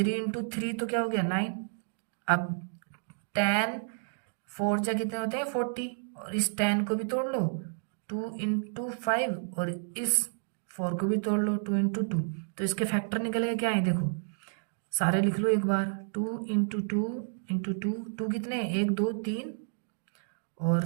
इंटू 3 तो क्या हो गया, 9। अब 10 4 जा कितने होते हैं, 40। और इस 10 को भी तोड़ लो, 2 इंटू 5। और इस 4 को भी तोड़ लो, 2 इंटू 2। तो इसके फैक्टर निकलेगा क्या है, देखो सारे लिख लो एक बार। 2 इंटू 2 इंटू 2, 2 कितने, 1 2 3, और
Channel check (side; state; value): left; silent; digital silence